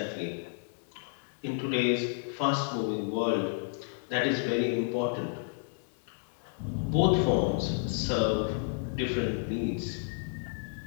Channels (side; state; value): right; silent; digital silence